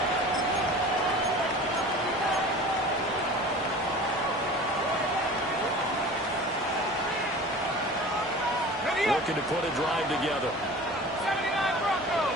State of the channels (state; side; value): normal; both; correlation 0.39